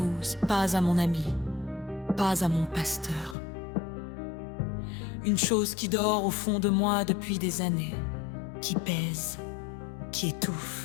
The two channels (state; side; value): drops out; right; at 3.4 s